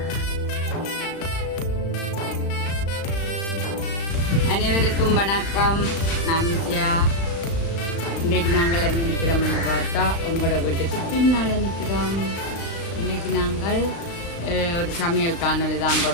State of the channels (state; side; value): late; right; 36 ms